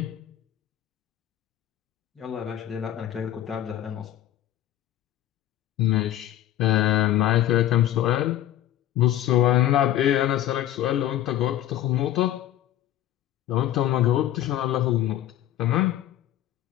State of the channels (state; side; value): quieter; right; 12.6 dB